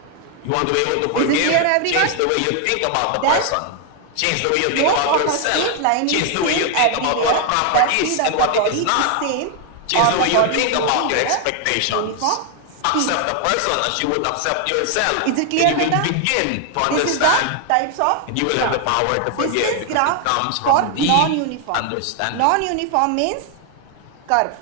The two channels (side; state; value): both; different; correlation 0.00